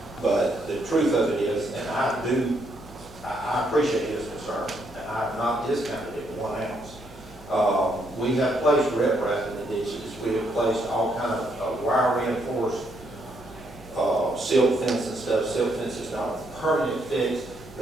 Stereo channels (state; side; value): noise; right; hum, 21 dB below the sound